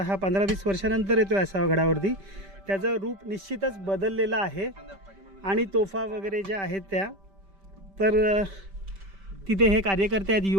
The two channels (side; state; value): left; late; 5.1 ms